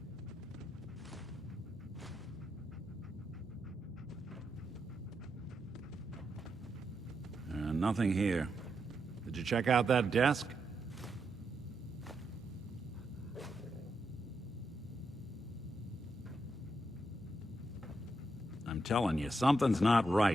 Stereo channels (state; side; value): normal; both; correlation 0.83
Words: Nothing here. Did you check out that desk? I'm telling you, something's not